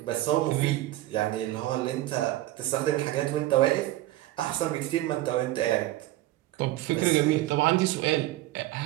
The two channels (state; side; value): quieter; left; 16.0 dB